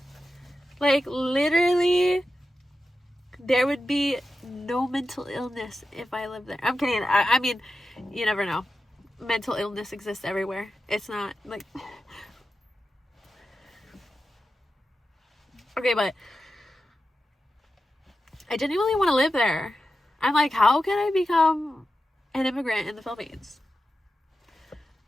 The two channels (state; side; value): normal; both; correlation 0.91